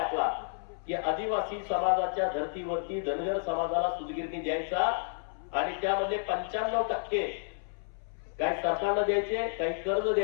की आदिवासी समाजाच्या धर्तीवरती धनगर समाजाला सुतगिरणी द्यायचा आणि त्यामध्ये 95% काही सरकारला द्यायचे, काही कर्ज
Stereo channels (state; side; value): silent; right; 57 dB below the other